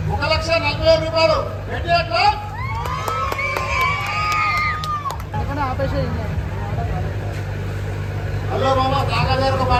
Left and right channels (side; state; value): both; identical; correlation 1.00